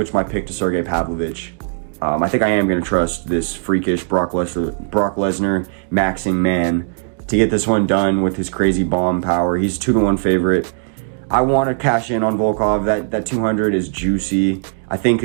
my pick to Sergey Pavlovich. I think I am gonna trust this freakish Brock Lesnar maxing man to get this one done with his crazy bomb power. He's 2-1 favorite. I want to cash in on Volkov. That 200 is juicy. I think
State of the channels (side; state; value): left; silent; digital silence